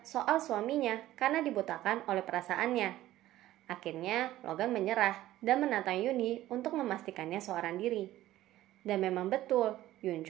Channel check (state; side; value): quieter; left; 14.8 dB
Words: soal suaminya karena dibutakan oleh perasaannya. Akhirnya Logan menyerah dan menantang Yoonhee untuk memastikannya seorang diri. Dan memang betul,